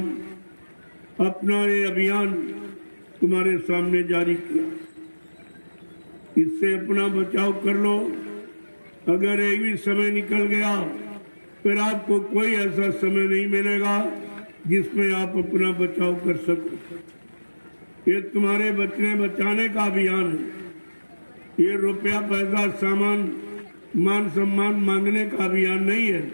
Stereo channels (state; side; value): inverted; both; correlation -1.00